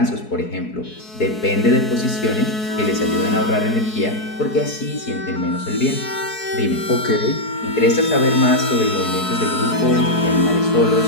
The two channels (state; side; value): late; right; 4.7 ms